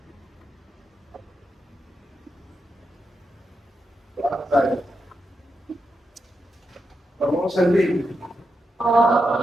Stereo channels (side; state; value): both; normal; correlation 0.86